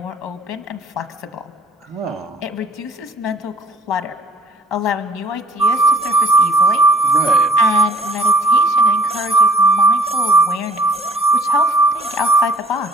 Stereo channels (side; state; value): both; normal; correlation 0.53